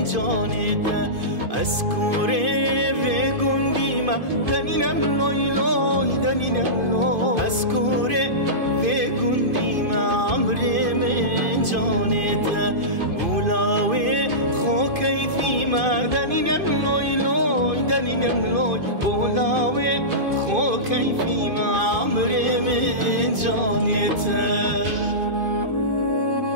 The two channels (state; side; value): late; left; 2.5 ms